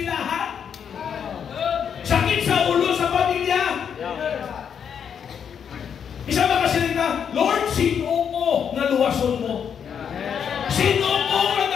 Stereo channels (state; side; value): quieter; right; 7.7 dB